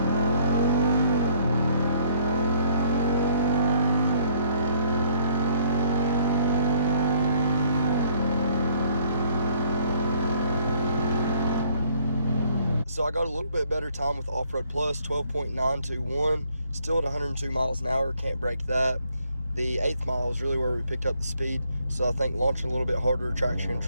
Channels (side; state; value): both; inverted; correlation -0.65